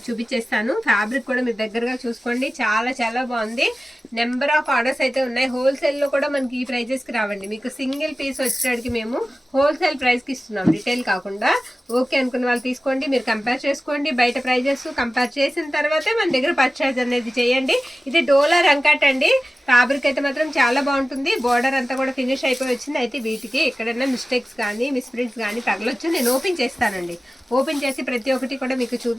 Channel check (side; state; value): both; normal; correlation 0.96